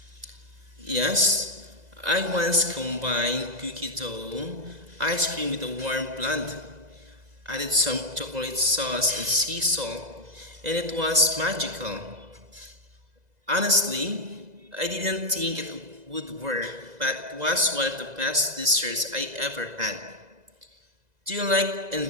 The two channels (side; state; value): left; late; 2.0 ms